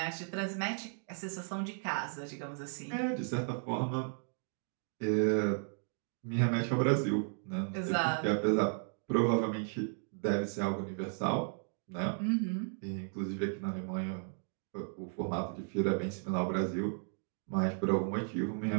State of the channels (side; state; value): left; silent; 55 dB below the other